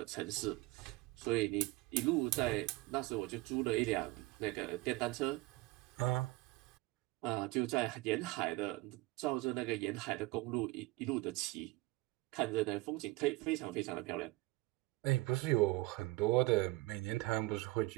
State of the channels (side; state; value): left; quieter; 21.5 dB